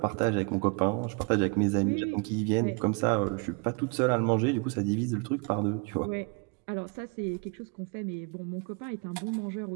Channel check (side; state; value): left; quieter; 32.9 dB